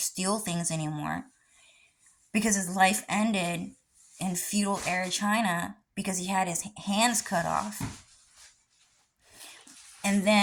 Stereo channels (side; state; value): both; identical; correlation 1.00